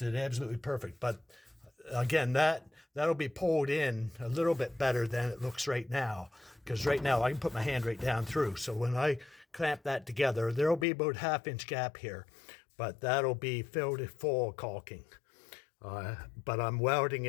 it absolutely perfect. But again, that'll be pulled in a little bit better than it looks right now, because right now I can put my hand right down through. So when I clamp that together, there'll be about 1/2 inch gap here, but that'll be filled full of caulking. But I'm welding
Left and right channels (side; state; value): right; drops out; at 10.9 s